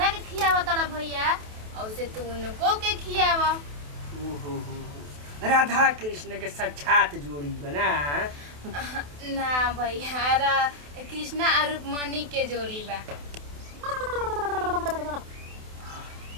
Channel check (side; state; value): left; late; 28 ms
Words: के खियावा तड़ा भैया औसे तू उनको के खियावा। राधा कृष्ण के साक्षात जोड़ी बना ना भैया कृष्णा और रुक्मणी के जोड़ी बा।